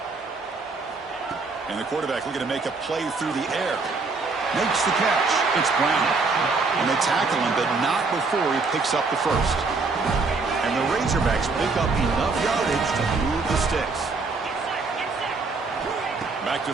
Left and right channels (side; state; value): left; quieter; 4.1 dB